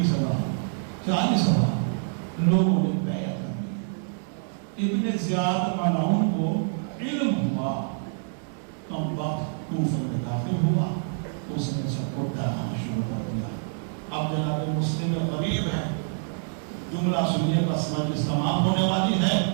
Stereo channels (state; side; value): silent; left; digital silence